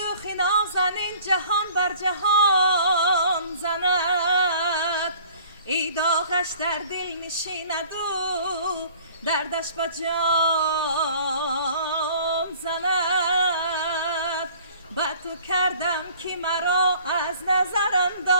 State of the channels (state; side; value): inverted; both; correlation -0.51